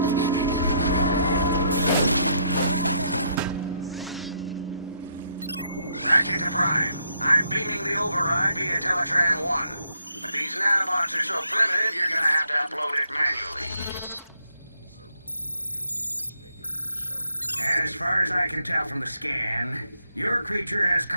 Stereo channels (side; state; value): both; inverted; correlation -0.73